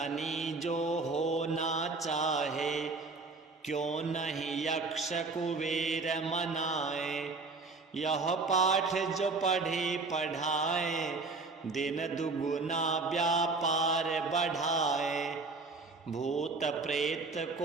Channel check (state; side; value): quieter; left; 3.8 dB